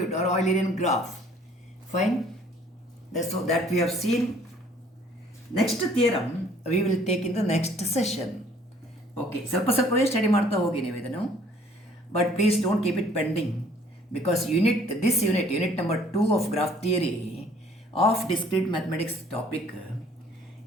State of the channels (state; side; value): normal; both; correlation 0.57